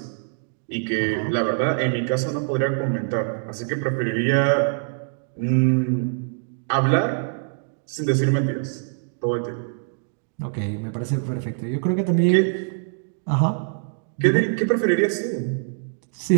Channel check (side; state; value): left; silent; digital silence